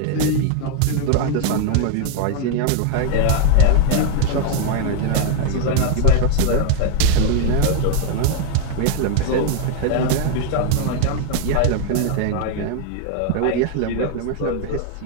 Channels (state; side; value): different; both; correlation 0.00